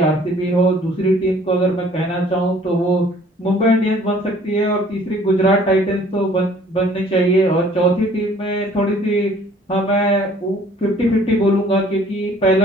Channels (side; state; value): both; normal; correlation 0.56